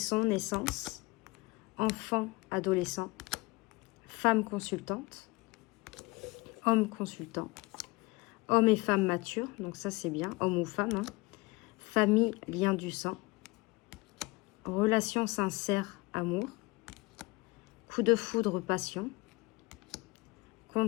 naissance, enfant, adolescent. Femme consultante, homme consultant, homme et femme matures, donc ça c'est bien, homme ou femme, hein. Famille, lien du sang, relation sincère, amour, coup de foudre, passion,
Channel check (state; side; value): quieter; right; 23.5 dB